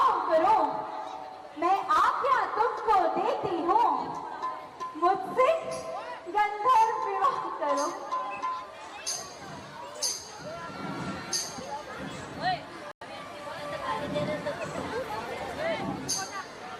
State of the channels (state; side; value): identical; both; correlation 1.00